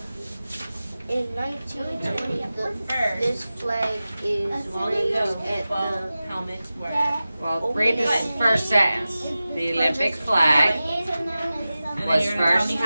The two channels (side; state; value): both; inverted; correlation -0.96